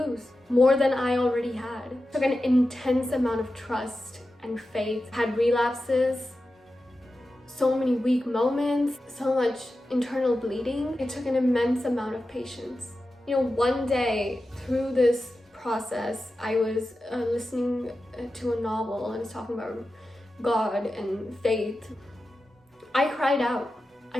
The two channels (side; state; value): both; normal; correlation 0.92